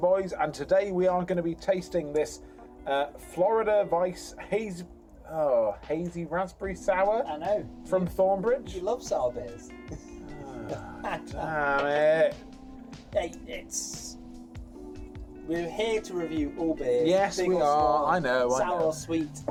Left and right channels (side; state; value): both; identical; correlation 1.00